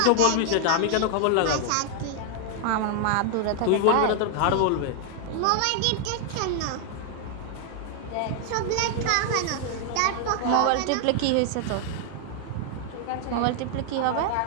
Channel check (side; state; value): both; different; correlation 0.00